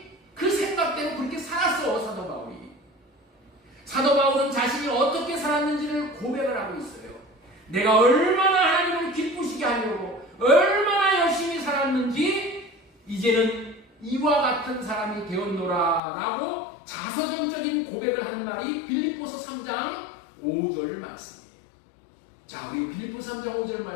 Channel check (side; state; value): right; drops out; at 16.0 s